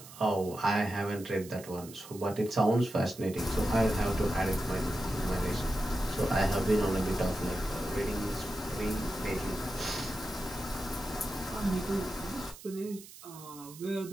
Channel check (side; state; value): right; noise; hiss, 17 dB below the sound